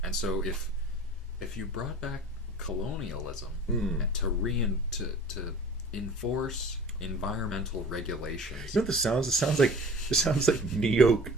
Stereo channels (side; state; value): both; normal; correlation 0.43